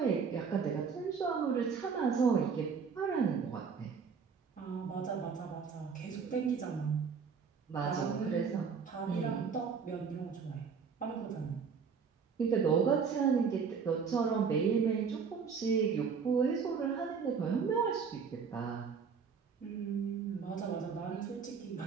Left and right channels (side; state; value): left; quieter; 6.0 dB